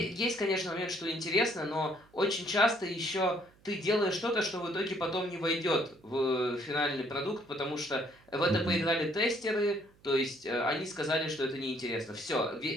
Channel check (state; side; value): noise; right; hum, 29 dB below the sound